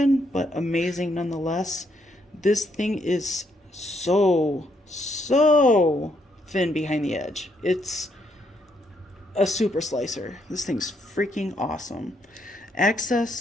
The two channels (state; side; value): normal; both; correlation 0.74